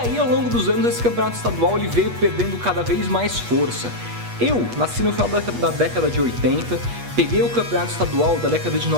ao longo dos anos, esse campeonato estadual ele veio perdendo cada vez mais força. Eu nasci no final da década de 80, peguei o campeonato estadual da década de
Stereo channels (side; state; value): left; late; 8.3 ms